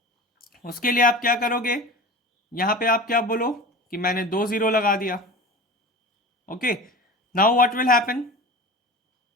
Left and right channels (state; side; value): normal; both; correlation 0.34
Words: उसके लिए आप क्या करोगे, यहाँ पे आप क्या बोलो कि मैंने 2 0 लगा दिया, okay. Now what will happen,